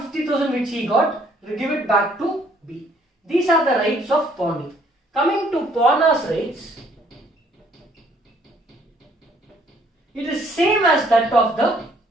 50,000 which he got, give it back to B. These are the rights of pawnee. Coming to pawner's rights, it is same as that of the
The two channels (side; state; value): both; normal; correlation 0.63